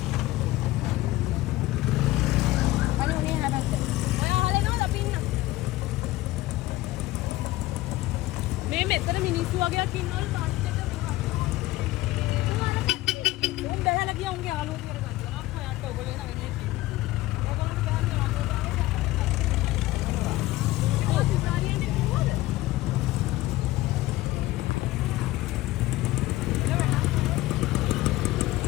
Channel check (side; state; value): right; quieter; 17.7 dB